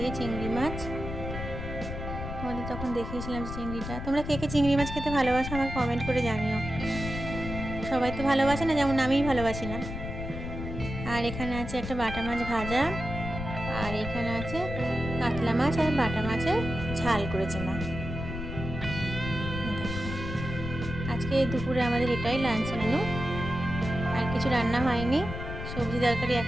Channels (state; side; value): noise; left; rumble, 7 dB below the sound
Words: চিংড়ি মাছ। তোমাদের তখন দেখিয়েছিলাম চিংড়িটা। তোমরা কে কে চিংড়ি মাছ খেতে ভালোবাসো আমাকে কমেন্ট করে জানিও। সবাই তো ভালোবাসে না, যেমন আমিই ভালোবাসি না। আর এখানে আছে একটা বাটা মাছ ভাজা, আর এখানে আছে কাতলা মাছ আর বাটা মাছের ঝাল করেছে মা। দেখো আজকে দুপুরে আমাদের এটাই লাঞ্চ মেনু, আর কিছু রান্না হয়নি। সবজি তরকারি